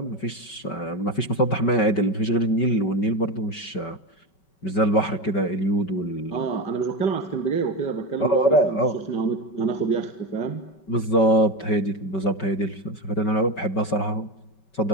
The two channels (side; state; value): right; late; 5.2 ms